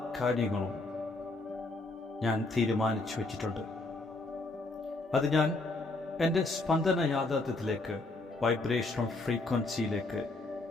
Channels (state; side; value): quieter; right; 3.1 dB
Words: കാര്യങ്ങളും ഞാൻ തീരുമാനിച്ചു വച്ചിട്ടുണ്ട്. അത് ഞാൻ എൻ്റെ സ്പന്ദന യാഥാർത്ഥ്യത്തിലേക്ക്, വൈബ്രേഷണൽ ഫ്രീക്വൻസിയിലേക്ക്,